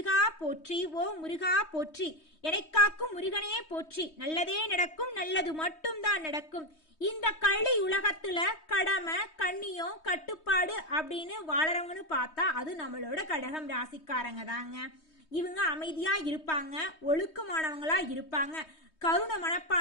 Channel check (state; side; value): late; right; 3.2 ms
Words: போற்றி, ஓ முருகா போற்றி, எனக்காக்கும் முருகனே போற்றி. நல்லதே நடக்கும், நல்லது மட்டும்தான் நடக்கும். இந்த கள்ளி உலகத்துல கடமை கண்ணியம் கட்டுப்பாடு அப்படின்னு வாழறவங்கன்னு பார்த்தா அது நம்மளோட கடகம் ராசிக்காரங்க தாங்க. இவங்க அமைதியா இருப்பாங்க, ஒழுக்கமானவங்களா இருப்பாங்க, கருணை